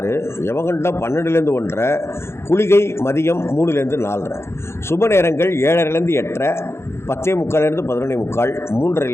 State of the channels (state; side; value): late; right; 0.12 ms